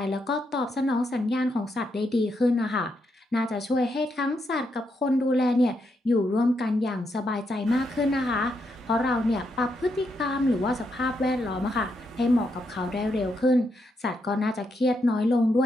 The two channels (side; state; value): both; normal; correlation 0.80